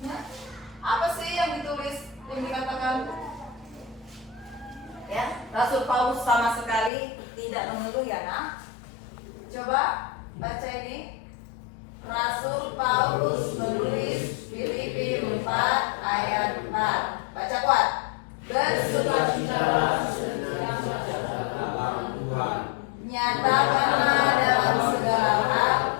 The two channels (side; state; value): right; drops out; at 6.9 s